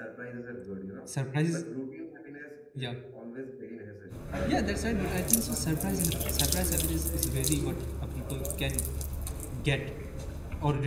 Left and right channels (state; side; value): identical; both; correlation 1.00